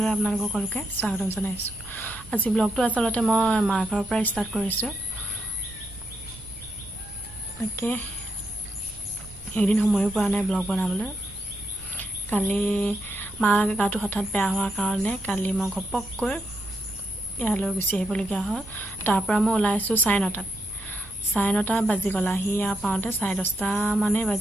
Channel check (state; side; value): noise; right; rumble, 19 dB below the sound